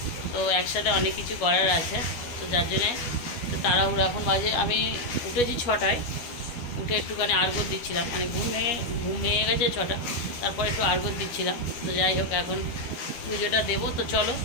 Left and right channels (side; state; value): right; late; 12 ms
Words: তো একসাথে অনেক কিছু করার আছে। তো যার জন্যে তাড়াহুড়ো এখন বাজে আমি উঠেছি 6টায় উঠে একটুখানি আর্ঘ্য দিচ্ছিলাম মানে ঘুম ভেঙে গেছে 6টা তারপর একটু আর্ঘ্য দিচ্ছিলাম। তো যাই হোক এখন পুজোটা দেবো। তো চলো